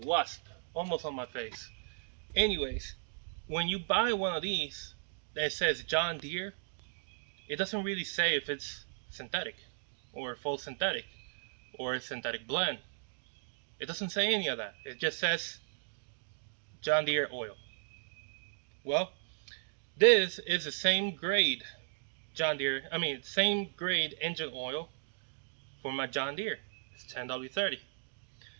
almost on my face. Anyways, when you buy one of these that says John Deere, it doesn't really say if it's synthetic or full synthetic or a synthetic blend. It doesn't say any of that. It just says John Deere oil. Well, this is the same grade same grade engine oil for my John Deere. It's 10W30.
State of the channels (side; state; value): left; silent; digital silence